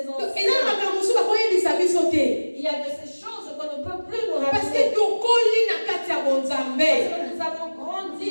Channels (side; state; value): both; inverted; correlation -1.00